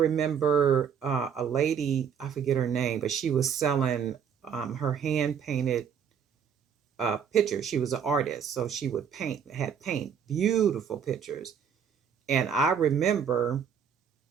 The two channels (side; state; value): left; quieter; 7.5 dB